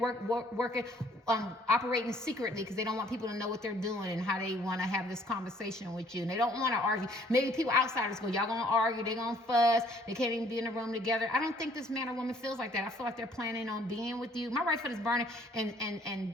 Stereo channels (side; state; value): both; normal; correlation 0.60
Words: operating secretly, because they don't want people to know what they're doing and how they want to have this conversation with you. And they don't want to argue. Maybe people outsiders go, y'all gonna argue, they're gonna fuss, they can't even be in the room together. I don't think this man or woman feels like that. I feel like they're planning on being with you. My right foot is burning,